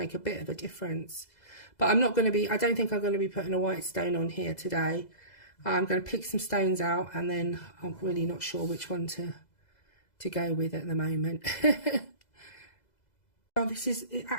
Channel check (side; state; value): right; late; 2.0 ms